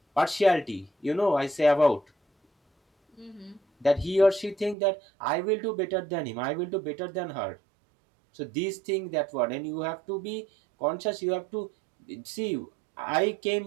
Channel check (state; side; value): drops out; left; at 4.8 s